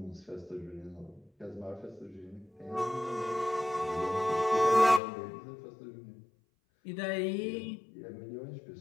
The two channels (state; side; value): drops out; right; at 5.0 s